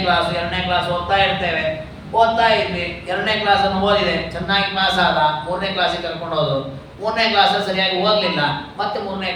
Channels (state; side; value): identical; both; correlation 1.00